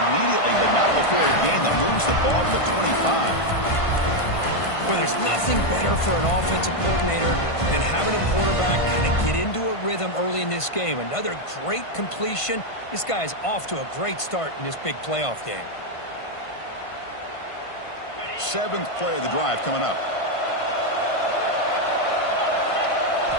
but not before a gain that moves the ball to the 25. Well, there's nothing better for an offensive coordinator than having a quarterback kind of get into a rhythm early in this game. Another great completion. This guy is off to a great start in this big playoff game. 7th play of the drive coming up.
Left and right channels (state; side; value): late; right; 1.5 ms